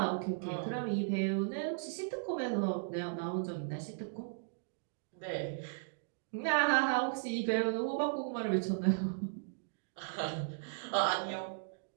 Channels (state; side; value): silent; left; digital silence